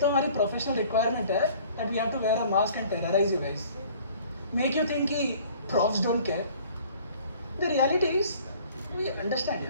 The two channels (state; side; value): inverted; both; correlation -0.52